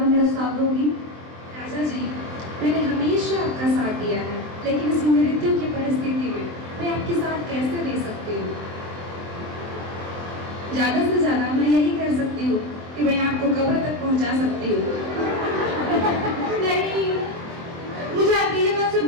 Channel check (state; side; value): late; left; 23 ms